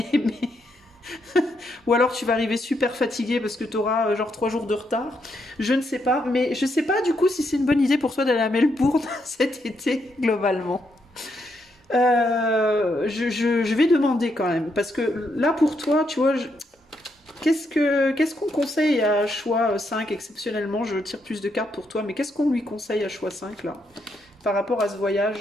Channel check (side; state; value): both; normal; correlation 0.78